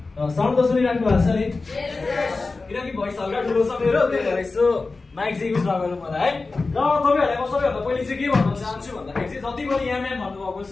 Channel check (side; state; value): right; quieter; 3.8 dB